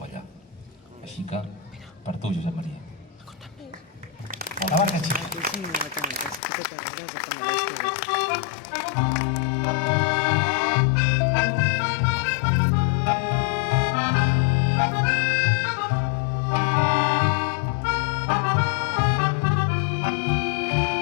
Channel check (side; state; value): right; drops out; at 6.4 s